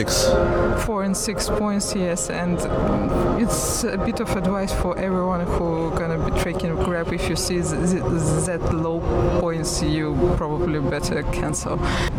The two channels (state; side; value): identical; both; correlation 1.00